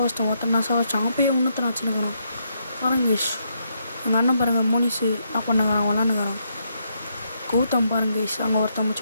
ஒருத்தன் நான் சாவச்சிட்டேன். அவன் போய் இன்னொருத்தனை வச்சுனுங்கிறான். பாருங்க கைஸ். எங்கள் அண்ணன் பாருங்கள் மோனிஷு என்ன பண்ணுங்கிறான் விளாண்டுங்கிறான். கௌதம் பாருங்க கைஸ். அங்கே ஒருத்தன்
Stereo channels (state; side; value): inverted; both; correlation -0.77